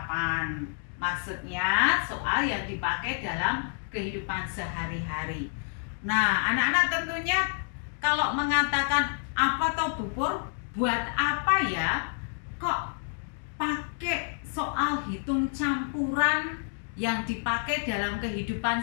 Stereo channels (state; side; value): silent; right; 59 dB below the other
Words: Maksudnya soal yang dipakai dalam kehidupan sehari-hari. Nah, anak-anak tentunya kalau mengatakan apa toh Bubur, buat apa ya kok pakai soal hitung campuran yang dipakai dalam kehidupan